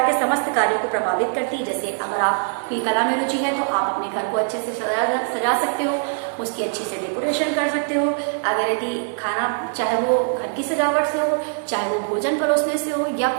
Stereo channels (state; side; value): silent; left; digital silence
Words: के समस्त कार्यों को प्रभावित करती है। जैसे अगर आपकी कला में रुचि है तो आप अपने घर को अच्छे से सजा सकते हो, उसकी अच्छी से डेकोरेशन कर सकते हो। अगर यदि खाना, चाहे वो घर की सजावट से हो, चाहे वो भोजन परोसने से हो, या